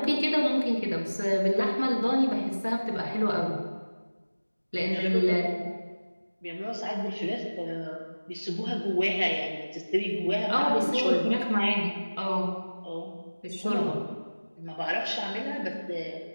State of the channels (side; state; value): both; inverted; correlation -1.00